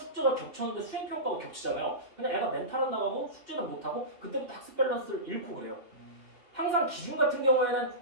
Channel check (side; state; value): left; late; 2.8 ms